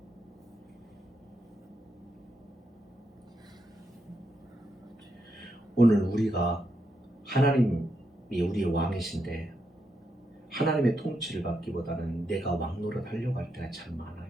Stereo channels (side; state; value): both; normal; correlation 0.82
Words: 오늘 우리가 하나님이 우리의 왕이신데 하나님의 통치를 받기보다는 내가 왕노릇 하려고 할 때가 참 많아요.